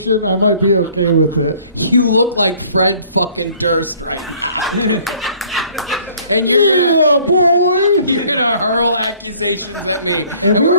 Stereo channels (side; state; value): both; inverted; correlation -0.56